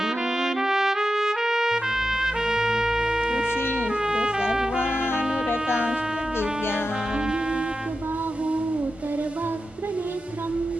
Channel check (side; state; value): both; normal; correlation 0.91